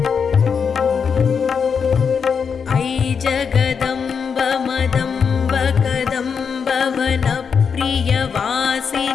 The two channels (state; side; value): quieter; right; 6.3 dB